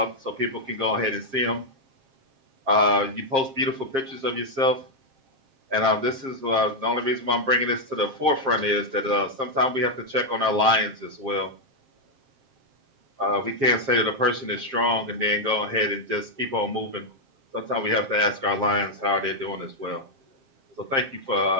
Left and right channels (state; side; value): late; left; 7.5 ms